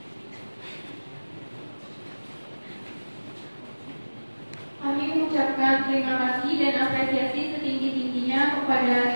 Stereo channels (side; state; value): both; inverted; correlation -1.00